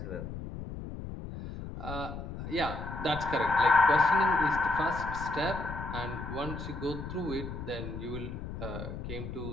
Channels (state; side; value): noise; left; rumble, 8 dB below the sound